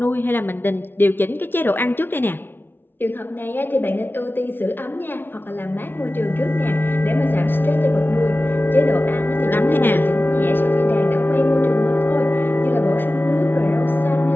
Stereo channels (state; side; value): late; right; 0.10 ms